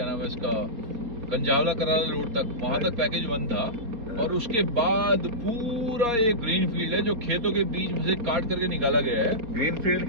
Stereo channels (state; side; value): late; left; 4.2 ms